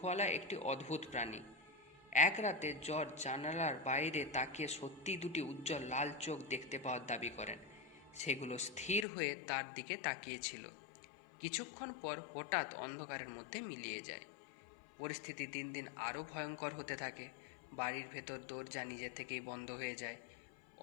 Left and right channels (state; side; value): drops out; right; at 9.1 s